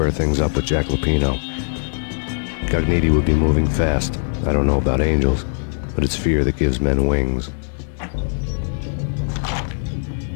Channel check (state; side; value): silent; right; digital silence